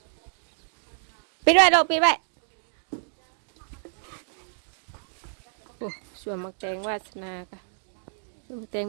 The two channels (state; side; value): silent; left; digital silence